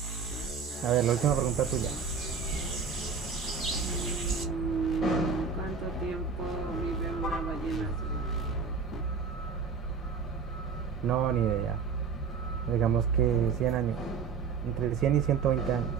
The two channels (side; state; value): left; quieter; 5.7 dB